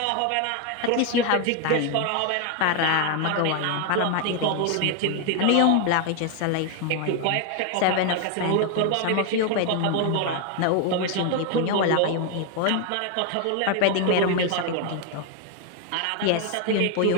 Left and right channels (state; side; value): different; both; correlation 0.01